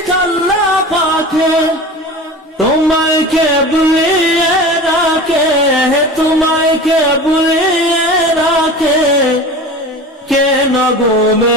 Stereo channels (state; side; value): normal; both; correlation 0.34